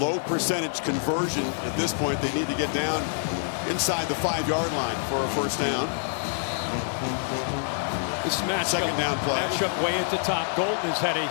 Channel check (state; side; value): silent; right; digital silence